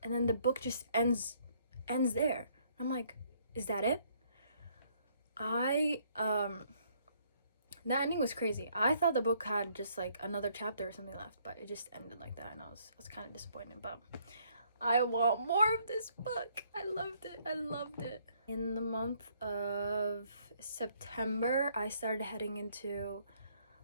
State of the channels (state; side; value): inverted; both; correlation -0.67